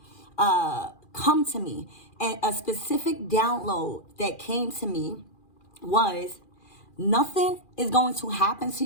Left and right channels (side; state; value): right; late; 2.4 ms